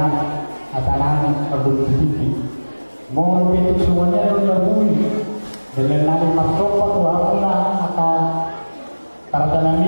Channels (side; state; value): both; inverted; correlation -1.00